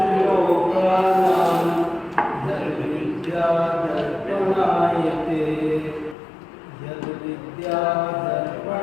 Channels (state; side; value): drops out; right; at 6.2 s